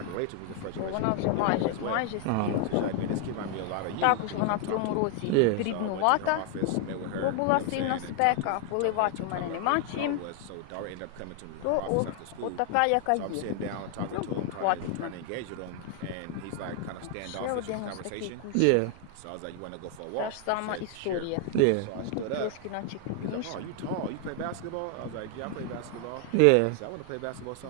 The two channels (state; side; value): different; both; correlation 0.00